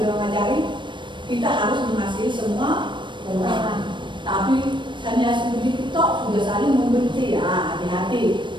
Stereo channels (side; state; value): left; late; 0.23 ms